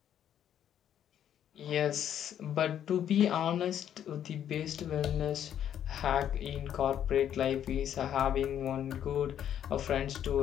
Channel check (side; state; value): right; quieter; 10.0 dB